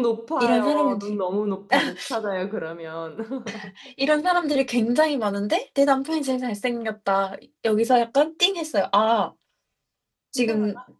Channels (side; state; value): both; identical; correlation 1.00